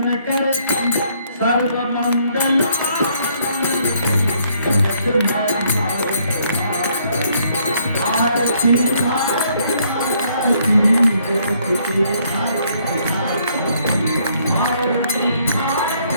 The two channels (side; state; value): both; inverted; correlation -0.68